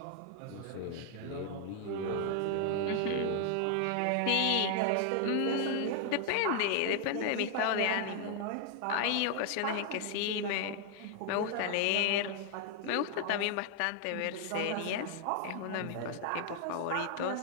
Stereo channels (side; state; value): both; different; correlation 0.00